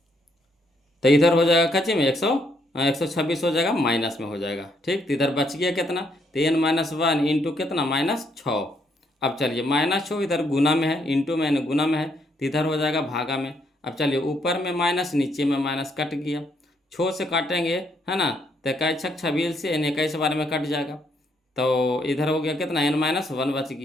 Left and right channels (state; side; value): normal; both; correlation 0.73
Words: तो इधर हो जाएगा कच्चे में 126 हो जाएगा, माइनस में हो जाएगा, ठीक। तो इधर बच गया कितना, तो एन -1 इंटू कितना, -6। अब चलिए, -6 इधर गुना में है, इंटू में गुना में है, तो इधर हो जाएगा भागा में। अब चलिए ऊपर में माइनस नीचे में माइनस कट गया, छो से काटेंगे है ना, तो 21 छक 26 से यानी 21 बार में कट जाएगा। तो इधर हो गया कितना n-1 बच